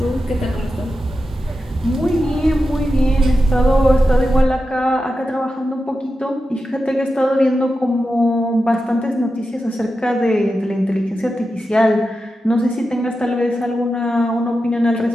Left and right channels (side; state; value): both; normal; correlation 0.90